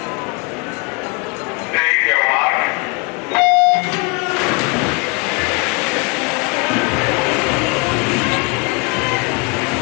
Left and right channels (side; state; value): right; quieter; 30.6 dB